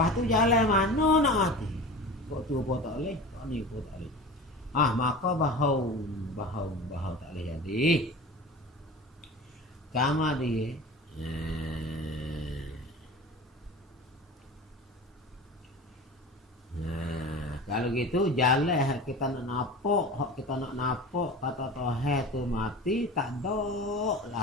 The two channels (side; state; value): both; normal; correlation 0.35